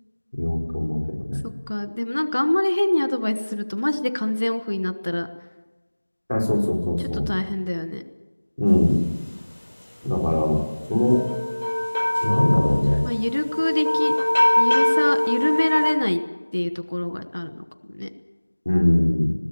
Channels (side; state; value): both; inverted; correlation -1.00